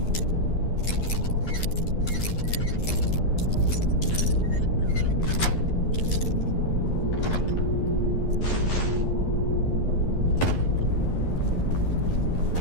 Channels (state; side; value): late; right; 11 ms